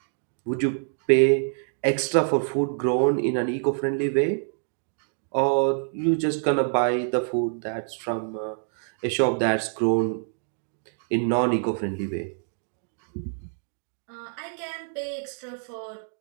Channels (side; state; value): left; silent; 61 dB below the other